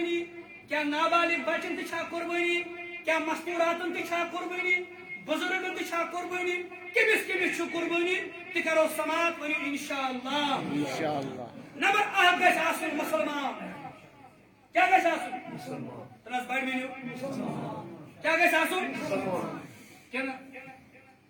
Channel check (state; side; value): identical; both; correlation 1.00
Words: کیاہ نابالغ بچن تہِ چھا قربٲنی کیاہ مستوٗراتن تہِ چھا قربٲنی بُزرگن تہِ چھا قربٲنی کٔمِس چھُ قربٲنی تہِ کرو سماعت ؤنِو انشاءاللہ نمبر اکھ گژھِ آسُن مُسلمان کیاہ گژھِ آسُن تنس بڑِ ؤنِو کیاہ گژھِ آسُن کِنہٕ